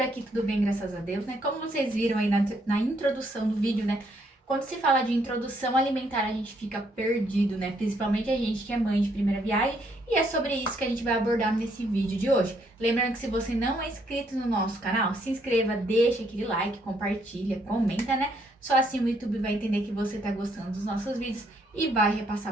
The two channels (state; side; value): normal; both; correlation 0.71